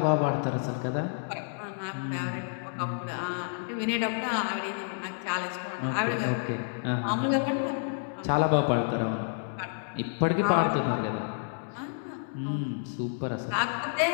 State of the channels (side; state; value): right; silent; digital silence